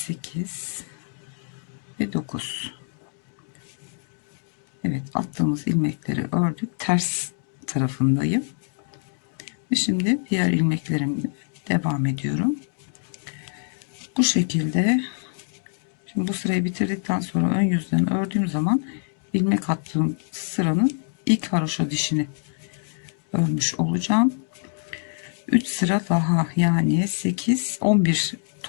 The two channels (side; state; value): right; silent; digital silence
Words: ve 9. Evet, attığımız ilmekleri ördük. Ters tarafındayım. Ve şimdi diğer ilmeklerimle devam ediyorum. Bu şekilde. Şimdi bu sırayı bitirdikten sonra ön yüzden ördüğüm zaman ilmek attığım sıranın ilk haroşa dişini örmüş olacağım. 3 sıra daha, yani 8 11